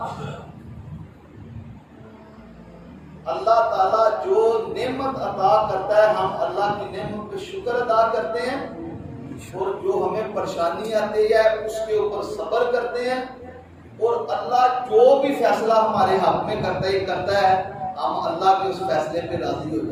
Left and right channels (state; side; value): identical; both; correlation 1.00